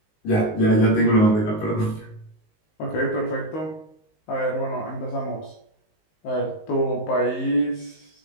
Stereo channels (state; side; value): late; right; 19 ms